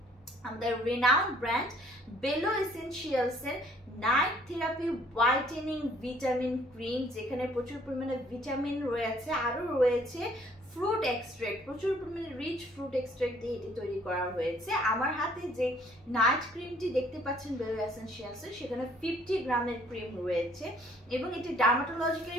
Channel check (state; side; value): normal; both; correlation 0.60